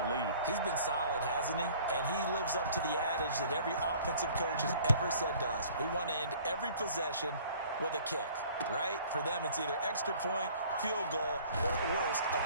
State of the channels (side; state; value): both; inverted; correlation -0.52